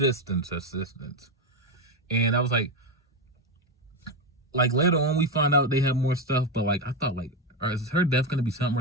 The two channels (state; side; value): normal; both; correlation 0.10